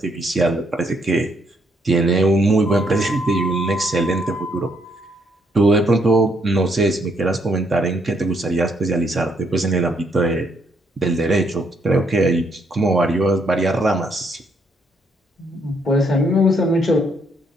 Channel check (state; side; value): normal; both; correlation 0.73